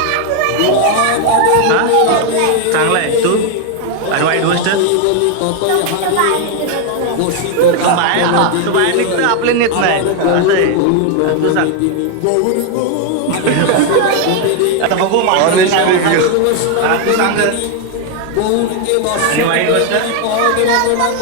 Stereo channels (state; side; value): different; both; correlation 0.01